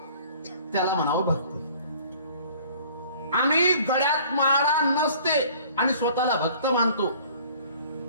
त्याला म्हणावं भक्ती. आम्ही गळ्यात माळा नसते आणि स्वतःला भक्त मानतो,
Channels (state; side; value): inverted; both; correlation -0.52